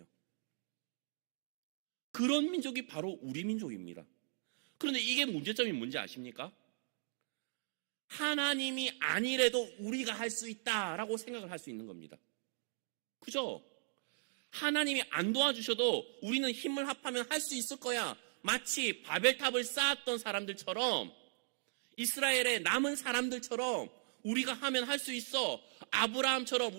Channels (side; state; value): left; silent; digital silence